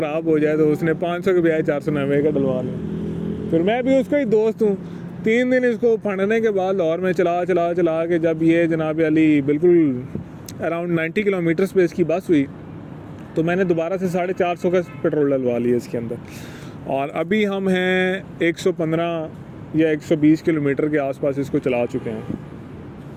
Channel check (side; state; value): both; identical; correlation 1.00